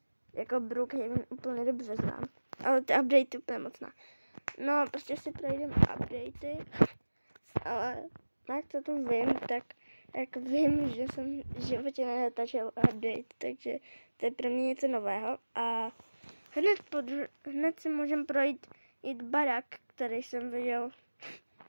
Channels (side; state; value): both; inverted; correlation -1.00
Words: jako Brookhaven úplně dobře znám, ale ty updatey úplně moc ne. No, prostě si projdeme updatey, ale jak to tu vím, tak jako vím, že jsem v životě nenatáčel update, takže to je pro mě něco nového a hned si můžeme projít barák, který jsem viděl.